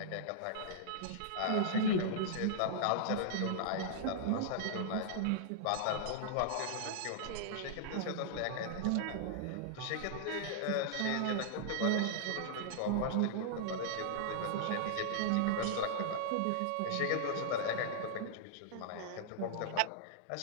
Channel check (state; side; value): different; both; correlation -0.02